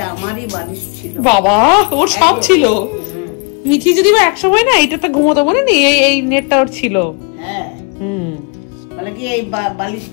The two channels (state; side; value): quieter; right; 34.4 dB